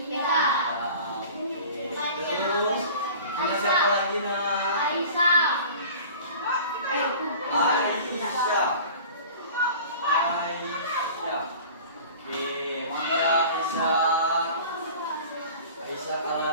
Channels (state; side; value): inverted; both; correlation -0.42